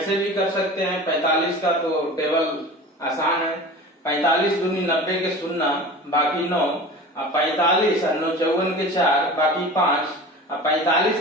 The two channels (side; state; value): both; normal; correlation 0.36